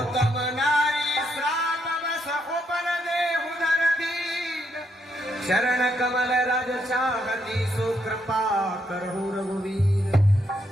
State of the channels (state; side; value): normal; both; correlation 0.76